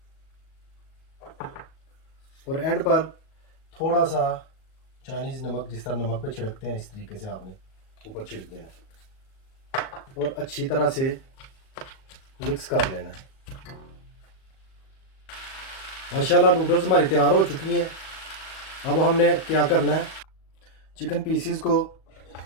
और एंड पर थोड़ा सा चाइनीज़ नमक, जिस तरह नमक पे छिड़कते हैं इस तरीके से आपने ऊपर छिड़क देना और अच्छी तरह से मिक्स कर लेना है। माशाल्लाह नूडल्स हमारी तैयार हो चुकी हैं। अब हमने क्या करना है, चिकन पीसीस को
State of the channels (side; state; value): right; late; 38 ms